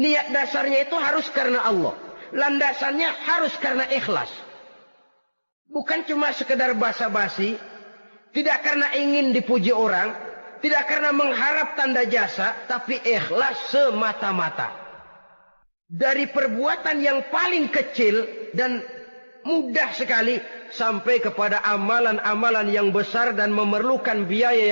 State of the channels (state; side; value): inverted; both; correlation -1.00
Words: dasarnya itu harus karena Allah. Landasannya harus karena ikhlas. Bukan cuma sekedar basa-basi, tidak karena ingin dipuji orang, tidak karena mengharap tanda jasa, tapi ikhlas semata-mata. Dari perbuatan yang paling kecil dan mudah sekali sampai kepada amalan-amalan yang besar dan memerlukan biaya